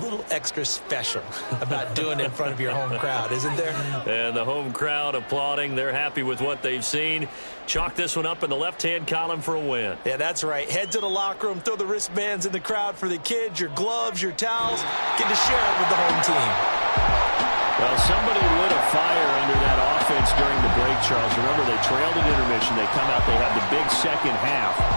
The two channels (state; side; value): inverted; both; correlation -1.00